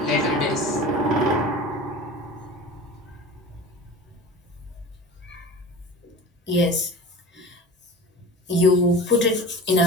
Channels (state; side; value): normal; both; correlation 0.36